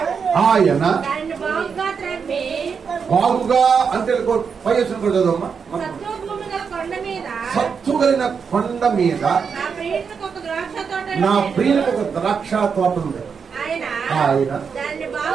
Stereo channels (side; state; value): left; quieter; 6.1 dB